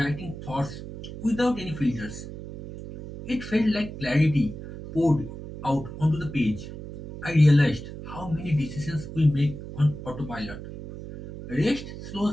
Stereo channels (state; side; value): noise; right; hum, 11 dB below the sound